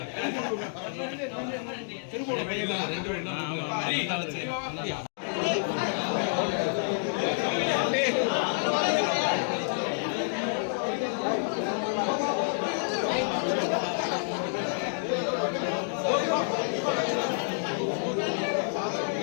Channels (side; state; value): right; silent; digital silence